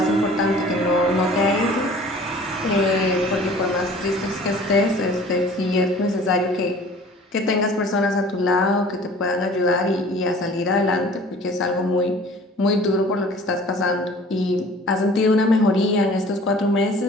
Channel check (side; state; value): both; normal; correlation 0.48